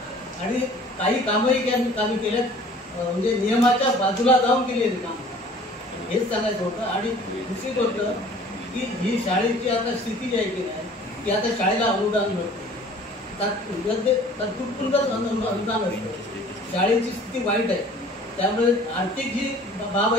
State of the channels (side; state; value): both; normal; correlation 0.50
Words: आणि काही कामही कामी केल्यात म्हणजे नियमाच्या बाजूला जाऊन केलेली कामं हेच सांगायचं होतं. आणि दुसरी गोष्ट की ही शाळेची आता स्थिती जी आहे की नाही की आता शाळेला अनुदान मिळतं तात्पुरतं अनुदान असतं. शाळेची स्थिती वाईट आहे त्यामुळे आर्थिक जी बाब